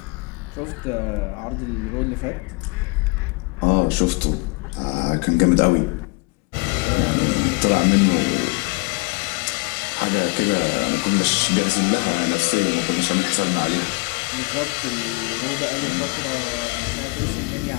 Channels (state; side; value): quieter; right; 30.2 dB